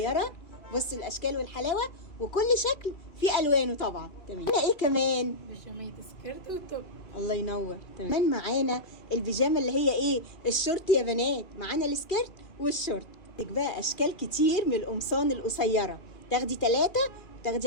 بصوا الاشكال والحلاوة وكل شكل فيه الوانه طبعا. تمام. معانا ايه كمان؟ بيجامية سكيرت وتوب. الله ينور. كمان معانا البيجامه اللي هي ايه؟ الشورت يا بنات. معانا السكيرت والشورت. عندك بقى اشكال كتير من القمصان القصيره، تاخدي 3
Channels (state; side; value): late; right; 2.4 ms